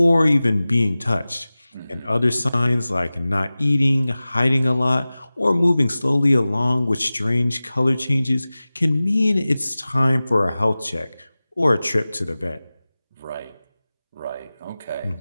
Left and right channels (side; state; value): both; inverted; correlation -0.97